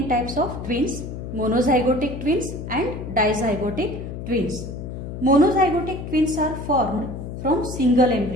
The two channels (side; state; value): left; noise; hum, 8 dB below the sound